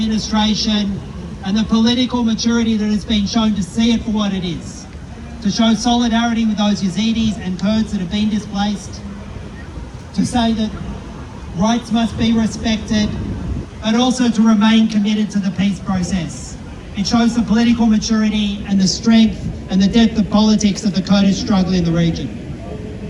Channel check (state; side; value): identical; both; correlation 1.00